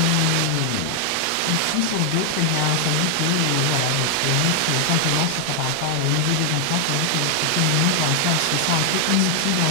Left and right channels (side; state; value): both; different; correlation 0.00